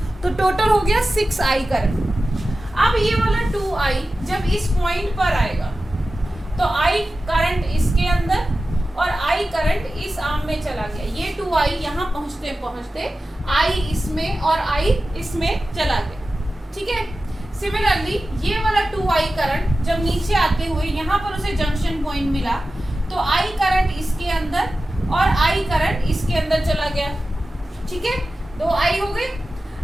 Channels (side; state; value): both; normal; correlation 0.94